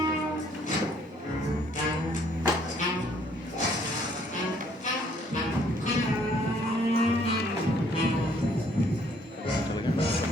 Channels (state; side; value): normal; both; correlation 0.63